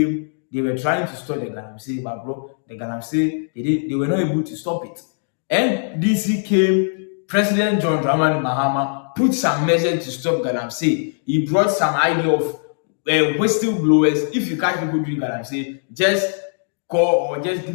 they were trying to stop the Galamsey, but bro, the Galamsey, they were not able to stop it. NDC came, President John Dramani Mahama put some measures to stop Galamsey. He brought some idea of whistleblowers. If you catch people doing Galamsey, just call or just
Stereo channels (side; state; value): right; silent; digital silence